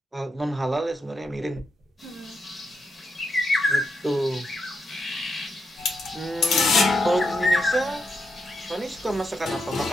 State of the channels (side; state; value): both; normal; correlation 0.82